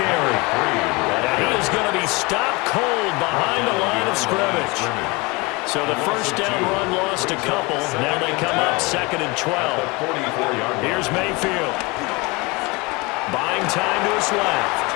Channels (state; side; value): quieter; right; 25.7 dB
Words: And he is going to be stopped cold behind the line of scrimmage. So the first down run lost a couple. Now they come up 2nd and 12. Here's Mayfield. Buying time to his left.